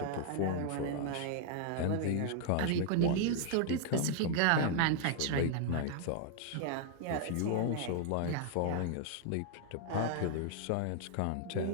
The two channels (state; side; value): different; both; correlation 0.00